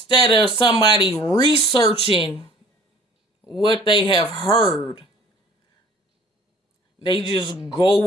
of somebody researching what they have heard, they just go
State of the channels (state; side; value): normal; both; correlation 0.52